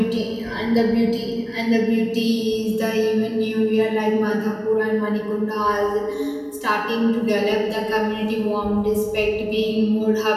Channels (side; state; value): both; identical; correlation 1.00